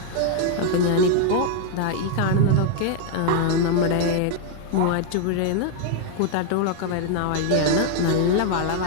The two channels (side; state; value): both; different; correlation 0.00